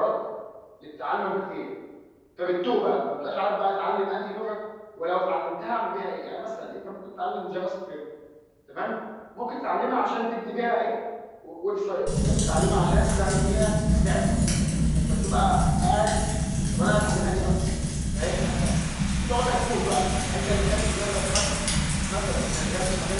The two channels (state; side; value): identical; both; correlation 1.00